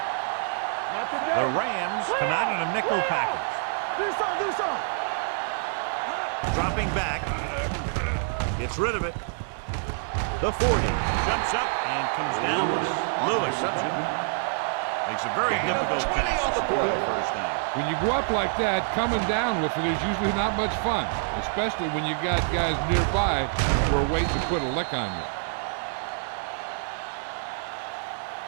Not today. The Rams come out in a nickel package. Do something. Dropping back. Gets rid of it. The 40 jumps up and comes down with it. Lewis makes a very difficult catch to score the first down. When you go up like that, coming down with it is usually not much fun, especially when you got guys nearby who are waiting to put a lick on you.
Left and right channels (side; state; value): left; silent; digital silence